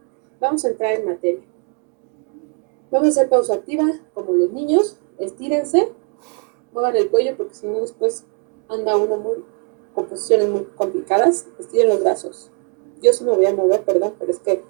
vamos a entrar en materia. Vamos a hacer pausa activa, como los niños. Estírense, muevan el cuello, porque si no después anda uno con posiciones muy complicadas. Estiren los brazos. Yo sí me voy a mover, perdón, pero es que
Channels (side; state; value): left; quieter; 37.1 dB